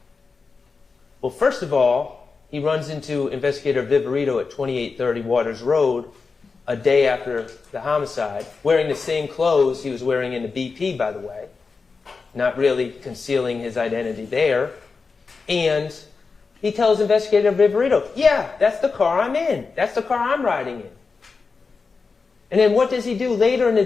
Well, first of all, he runs into Investigator Viverito at 2830 Waters Road a day after the homicide, wearing the same clothes he was wearing in the BP, by the way, not really concealing his identity there. And he tells Investigator Viverito, yeah, that's the car I'm in. That's the car I'm riding in. And then what does he do later in the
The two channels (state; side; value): quieter; right; 4.6 dB